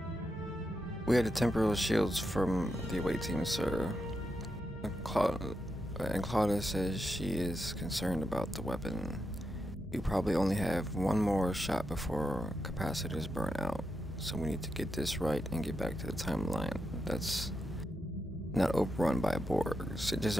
We had the temporal shields from the away team, sir. And Claudia says she is concerned about the weapon. We probably only have one more shot before capacitors burn out. So we need to get this right and get back to the timeline that's not overrun by Borg. Sitges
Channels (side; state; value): both; normal; correlation 0.86